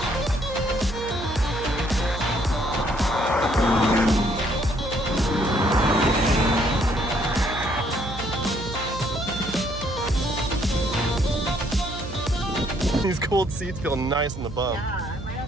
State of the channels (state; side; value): noise; right; hum, 10 dB below the sound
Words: These cold seats feel nice in the bum. Yeah, I might